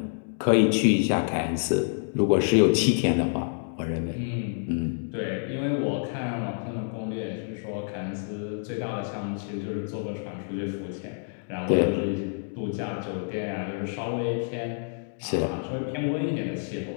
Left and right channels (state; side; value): silent; right; digital silence